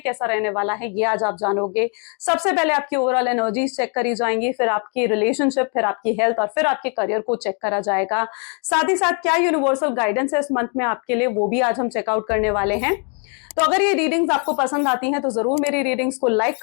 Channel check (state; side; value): quieter; right; 39.2 dB